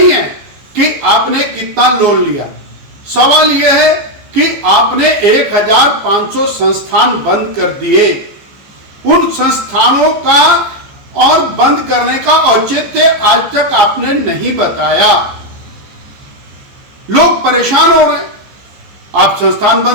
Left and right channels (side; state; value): left; late; 15 ms